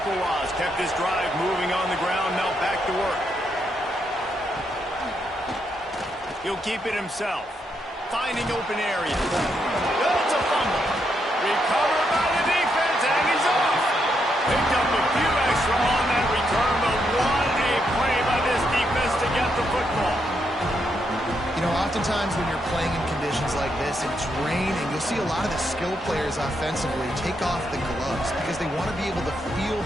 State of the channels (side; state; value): both; normal; correlation 0.79